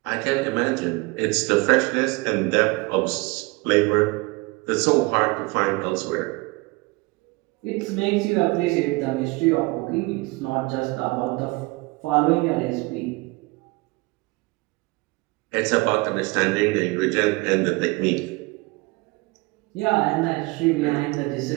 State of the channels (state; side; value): quieter; left; 25.1 dB